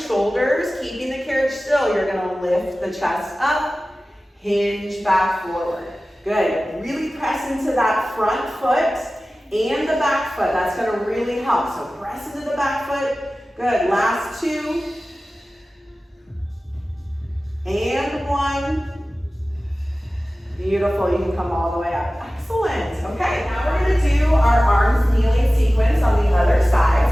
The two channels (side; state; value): both; normal; correlation 0.96